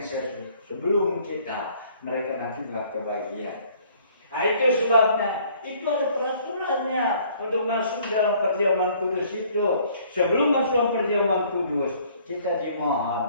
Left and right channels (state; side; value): inverted; both; correlation -0.59